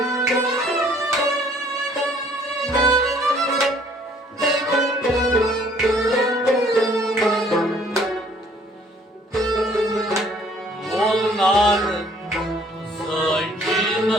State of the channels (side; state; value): both; normal; correlation 0.59